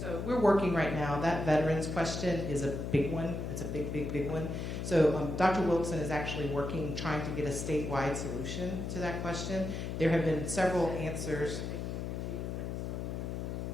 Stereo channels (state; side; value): noise; left; hum, 4 dB below the sound